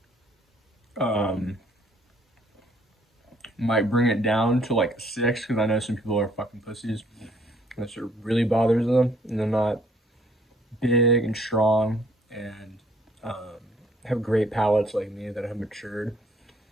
might bring it down to like 6, because I know some people are fucking pussies. And that sort of really bothers them, and they're not big and strong and have great palates like me that have matured.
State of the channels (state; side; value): normal; both; correlation 0.63